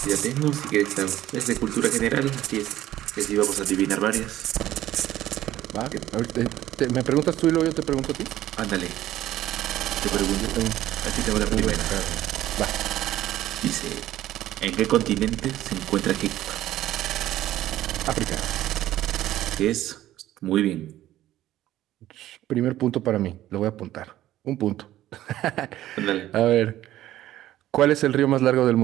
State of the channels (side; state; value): left; quieter; 13.8 dB